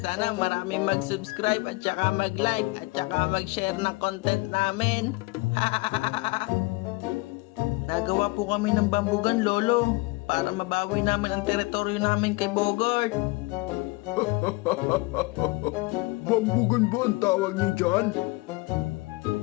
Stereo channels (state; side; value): quieter; right; 23.9 dB